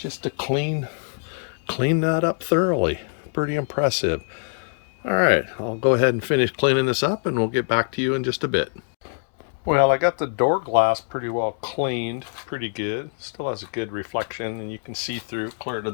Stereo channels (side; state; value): right; silent; digital silence